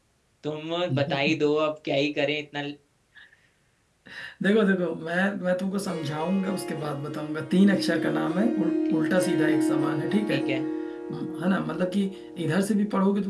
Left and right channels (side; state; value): both; identical; correlation 1.00